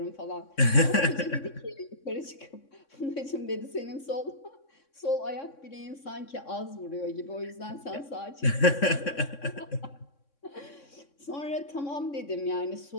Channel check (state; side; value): late; right; 3.6 ms